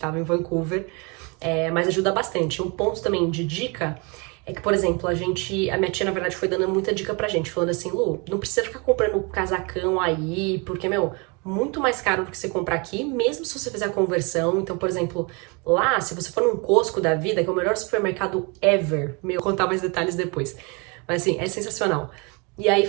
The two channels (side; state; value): left; quieter; 30.7 dB